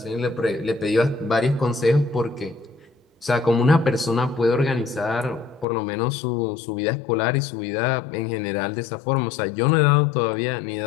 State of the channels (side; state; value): right; drops out; at 5.7 s